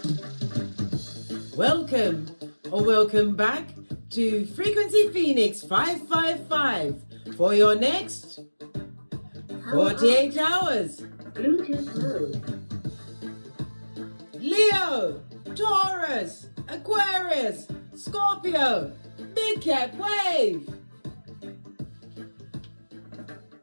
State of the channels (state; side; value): inverted; both; correlation -1.00